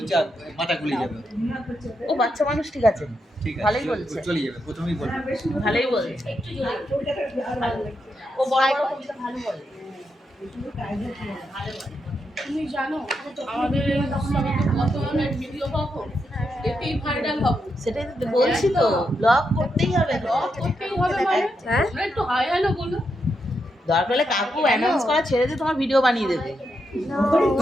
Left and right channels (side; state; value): both; normal; correlation 0.83